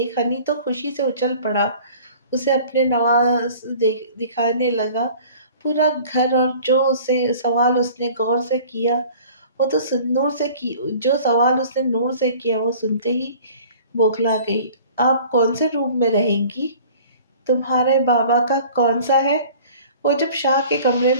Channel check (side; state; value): both; inverted; correlation -0.47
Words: ہنی تو خوشی سے اچھل پڑا، اسے اپنے نواز دکھانے لگا۔ پورا گھر اور جو سوال اس نے نور سے کیا وہ سنتے ہی بوکھلا گئی۔ آپ کون سے روم میں رہیں گی؟ تمہارے بابا کا کون سا ہے؟ وہ جب شاہ کے کمرے